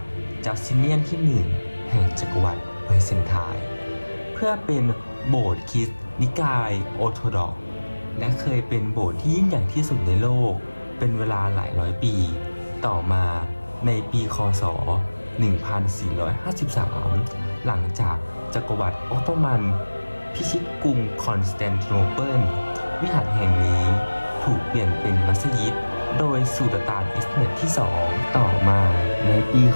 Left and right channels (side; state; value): both; inverted; correlation -1.00